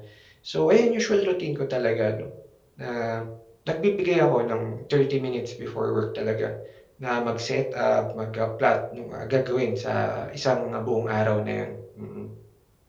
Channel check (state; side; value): identical; both; correlation 1.00